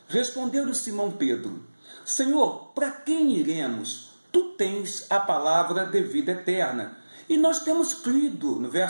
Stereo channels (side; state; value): both; inverted; correlation -1.00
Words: respondeu-lhe Simão Pedro: Senhor, para quem iremos? Tu tens a palavra de vida eterna. E nós temos crido, no